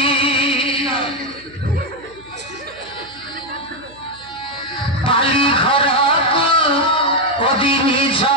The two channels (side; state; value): right; noise; hum, 25 dB below the sound